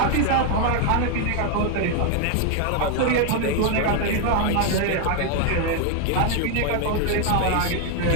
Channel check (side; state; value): both; different; correlation 0.01